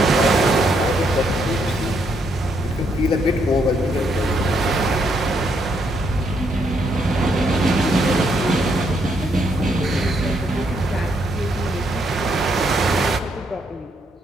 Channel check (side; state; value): both; normal; correlation 0.74